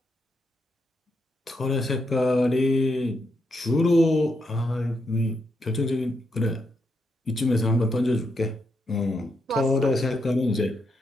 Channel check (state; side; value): normal; both; correlation 0.81